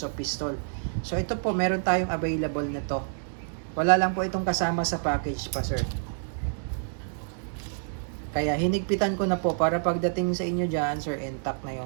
pistol. So ito po, meron tayong available na to. Wala lang po itong kasama sa package pa, sir. Kaya hinigpitan ko na po para pagdating sa inyo dyan, sir, intact na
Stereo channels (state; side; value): silent; left; digital silence